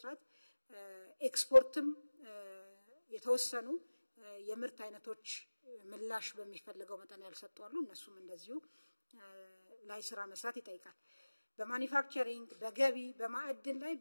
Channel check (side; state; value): both; inverted; correlation -1.00